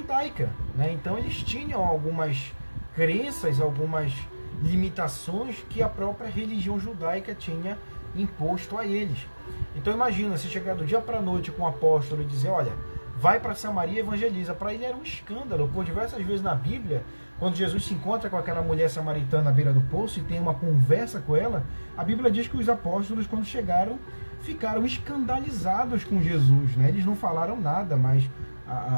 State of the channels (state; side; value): inverted; both; correlation -1.00